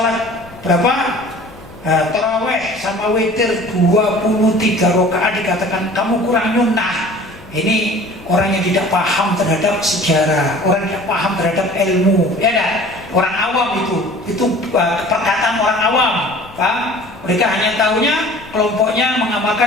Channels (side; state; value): left; noise; rumble, 22 dB below the sound